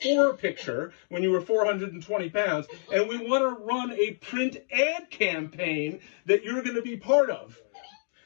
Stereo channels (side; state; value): right; silent; digital silence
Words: picture when you were 420 pounds. And we want to run a print ad campaign that you're going to be part of.